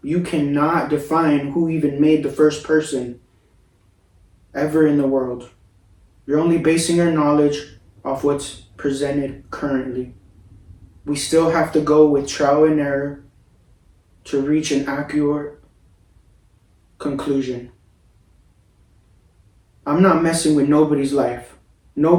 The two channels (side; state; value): both; identical; correlation 1.00